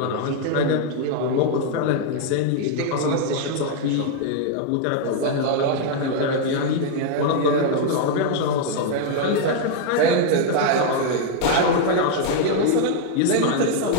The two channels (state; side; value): different; both; correlation 0.00